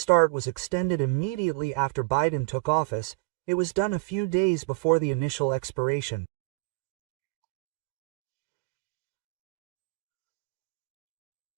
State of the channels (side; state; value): left; quieter; 26.8 dB